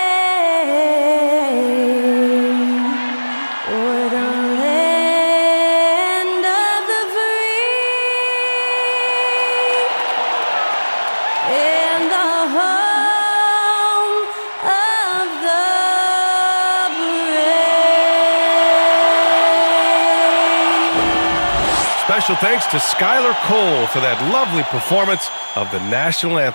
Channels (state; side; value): inverted; both; correlation -1.00